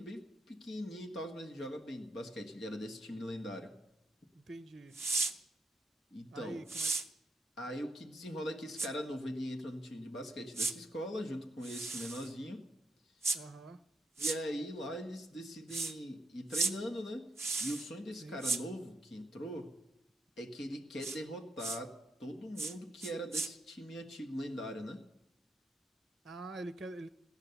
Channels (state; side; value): normal; both; correlation 0.79